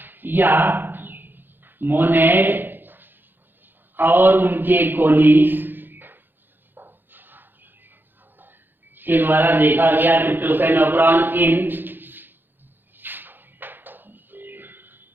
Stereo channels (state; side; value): late; left; 0.097 ms